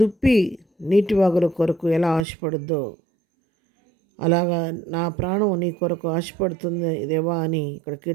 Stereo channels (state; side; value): drops out; left; at 2.2 s